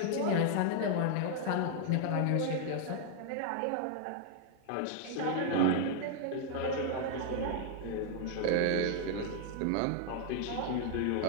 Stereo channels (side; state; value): both; different; correlation 0.00